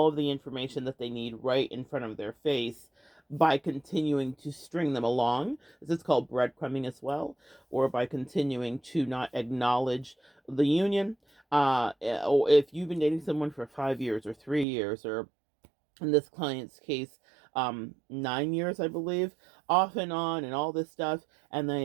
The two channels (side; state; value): left; drops out; at 14.7 s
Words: of the information that they need right in front of their face by continuing to string them along. This is called breadcrumbing as well, or by continuing to not acknowledge the union. Or if you've been dating someone for 5 years or 3 years, or in this client's case, 9 years, I believe, off and on, and all this stuff, and